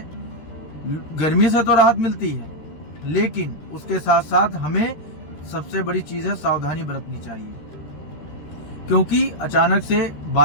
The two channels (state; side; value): late; right; 13 ms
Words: गर्मी से तो राहत मिलती है, लेकिन उसके साथ साथ हमें सबसे बड़ी चीज है सावधानी बरतनी चाहिए। क्योंकि अचानक से